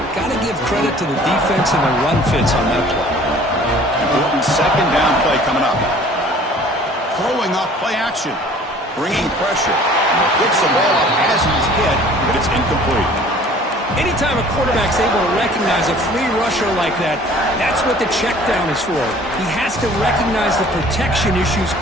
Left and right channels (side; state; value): both; normal; correlation 0.51